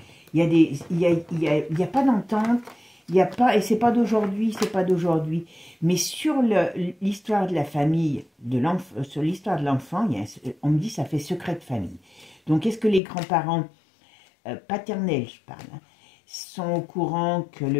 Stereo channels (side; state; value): right; drops out; at 13.0 s